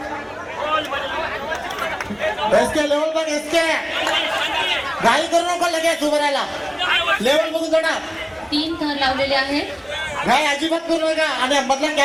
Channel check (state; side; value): identical; both; correlation 1.00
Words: एसके लेवल बघ. एसके घाई करू नको लगेच उभं राहायला. लेवल बघून जोडा. 3 थर लावलेले आहेत. घाई अजिबात करू नका. आणि मधला